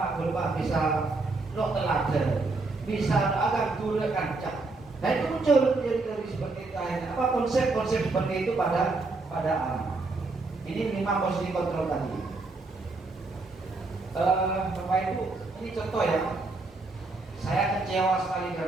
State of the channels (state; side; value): quieter; left; 3.5 dB